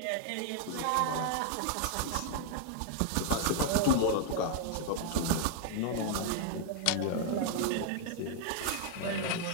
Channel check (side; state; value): both; different; correlation 0.00